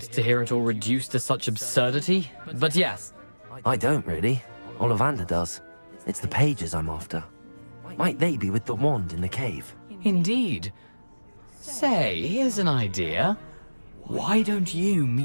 to hear it all reduced to such absurdity, but yes. I don't really. Ollivander does. It's the pages I'm after. Might they be with the wand in the cave? Indeed. Say, here's an idea. Why don't you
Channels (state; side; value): inverted; both; correlation -1.00